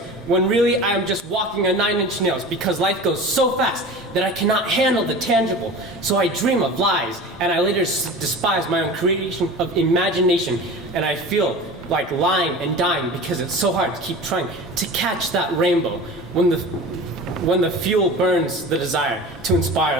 when really I am just walking on 9-inch nails because life goes so fast that I cannot handle the tangible. So I dream of lies, and I later despise my own creation of imagination, and I feel like lying and dying because it's so hard to keep trying to catch that rainbow when the fuel burns the desire to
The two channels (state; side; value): normal; both; correlation 0.35